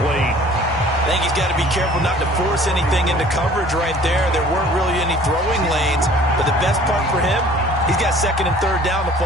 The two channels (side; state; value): both; normal; correlation 0.51